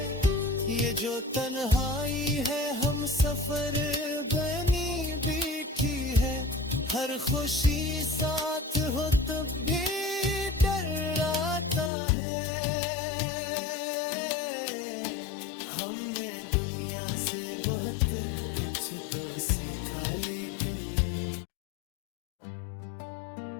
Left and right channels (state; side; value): drops out; right; at 11.9 s